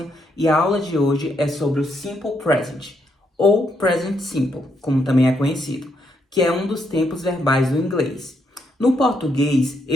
e a aula de hoje é sobre o Simple Present, ou Present Simple, como também é conhecido, que é um dos tempos verbais do inglês. No português,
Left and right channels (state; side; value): normal; both; correlation 0.77